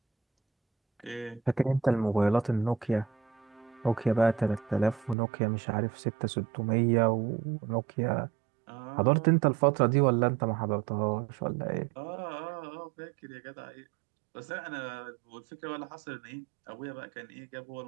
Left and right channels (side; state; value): left; drops out; at 5.2 s